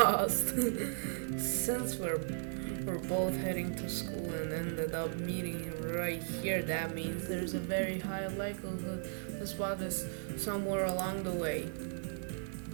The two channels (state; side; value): silent; left; 54 dB below the other